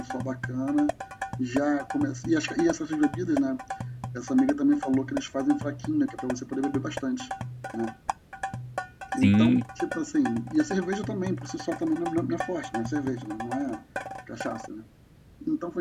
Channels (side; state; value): both; identical; correlation 1.00